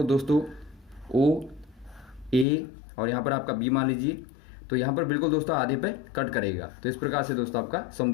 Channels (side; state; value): right; drops out; at 2.5 s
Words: दोस्तों OA, और यहाँ पर आपका B मान लीजिए, तो यहाँ पर बिल्कुल दोस्तों आधे पे कट करेगा। तो इस प्रकार से दोस्तों आपका